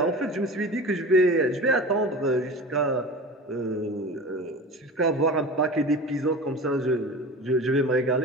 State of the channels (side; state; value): both; normal; correlation 0.33